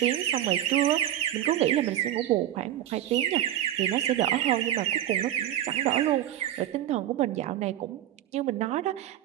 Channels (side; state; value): left; quieter; 12.3 dB